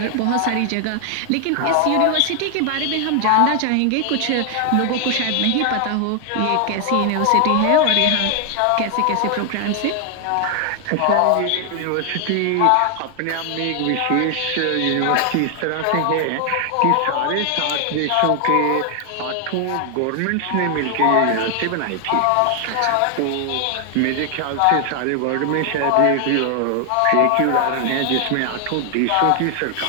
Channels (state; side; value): different; both; correlation 0.00